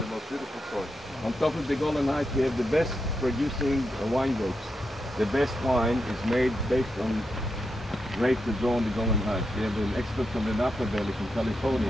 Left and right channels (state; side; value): normal; both; correlation 0.85